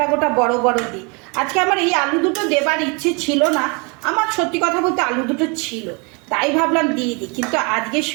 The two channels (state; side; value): quieter; left; 31.6 dB